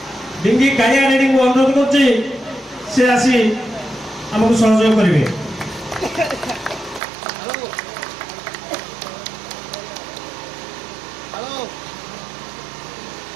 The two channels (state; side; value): drops out; left; at 7.0 s